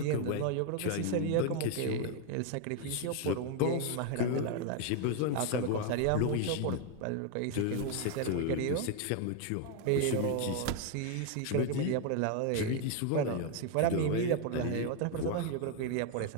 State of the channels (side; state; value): both; different; correlation 0.01